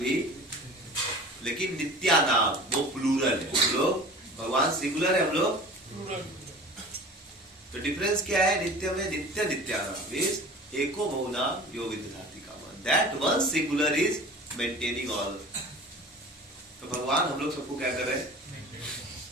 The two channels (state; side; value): normal; both; correlation 0.40